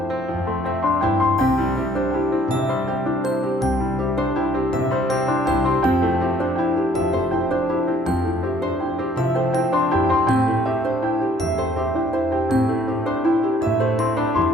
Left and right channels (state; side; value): normal; both; correlation 0.62